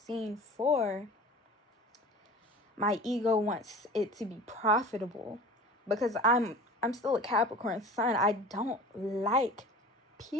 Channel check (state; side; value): normal; both; correlation 0.40